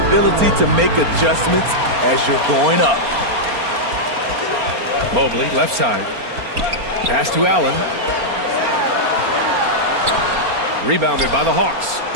to make adjustments as you're going up. Mobley, left side. Pass to Allen. Rebounded by the Hawks.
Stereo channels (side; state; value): left; late; 4.3 ms